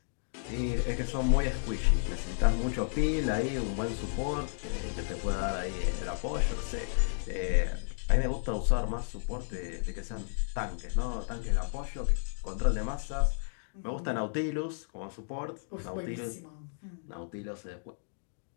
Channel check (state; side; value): silent; right; digital silence